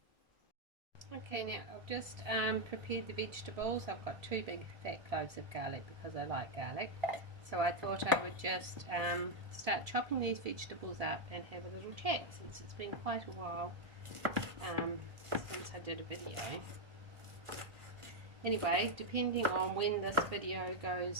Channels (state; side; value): late; left; 1.7 ms